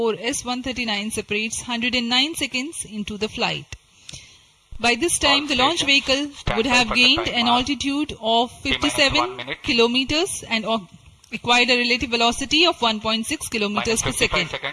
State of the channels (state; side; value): identical; both; correlation 1.00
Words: S139, separates 109 seconds into the flight. By this time, the launch vehicle would have gained an altitude of 57 kilometers and acquired a relative velocity of 1.6 kilometers per second.